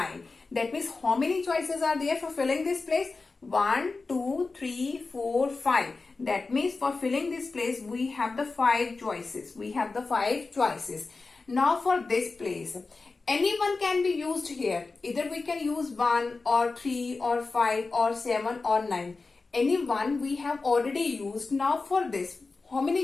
That means how many choices are there for filling this place? 1, 2, 3, 4, 5. That means for filling this place, we have the 5 choices. We have the 5 choices. Now for this place, anyone can be used here. Either we can use 1 or 3 or 5 or 7 or 9. Any one we have already used. Now for this, how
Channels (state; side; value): quieter; right; 3.9 dB